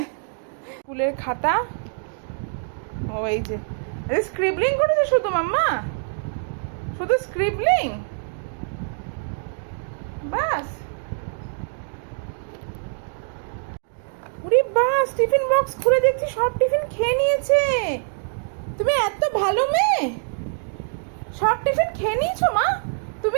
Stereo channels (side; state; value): left; silent; digital silence